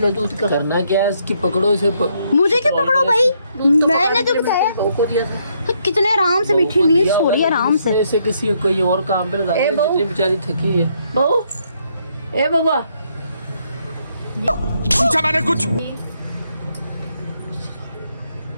दूध का करना क्या है? इसकी पकड़ो इसे। मुझे क्या पकड़ो भाई? मैंने तो बताया को दिया था। कितने आराम से मीठी नींद सो रही है आराम से। ऐसे किसी कोई और काम पे लगा दे, जितनी बेचारी थकी है। बहू ए बाबा पूछा मैंने कुछ।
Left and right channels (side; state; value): both; inverted; correlation -0.73